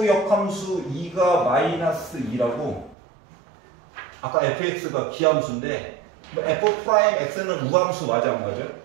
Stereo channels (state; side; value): drops out; left; at 3.0 s